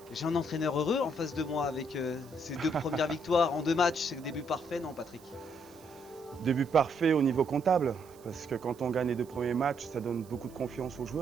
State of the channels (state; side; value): noise; right; hiss, 25 dB below the sound